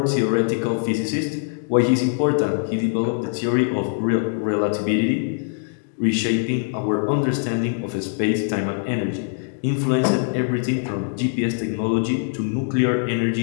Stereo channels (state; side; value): silent; right; digital silence